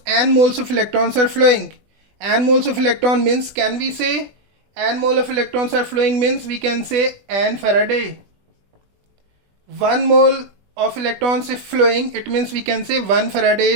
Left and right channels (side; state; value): left; late; 20 ms